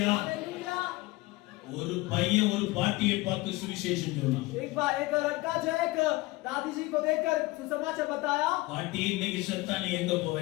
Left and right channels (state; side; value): quieter; right; 21.0 dB